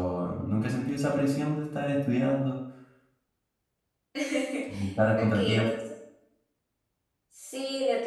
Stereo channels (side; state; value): both; identical; correlation 1.00